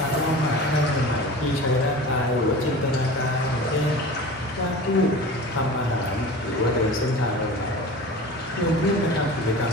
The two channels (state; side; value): normal; both; correlation 0.36